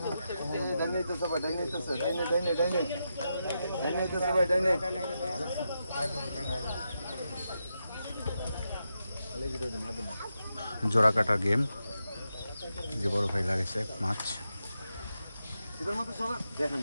জোড়া কাটা গেম, যে বড় ভাই লাগাইছে মাছ।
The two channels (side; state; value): both; inverted; correlation -0.86